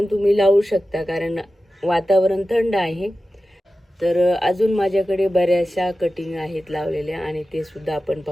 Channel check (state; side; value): normal; both; correlation 0.94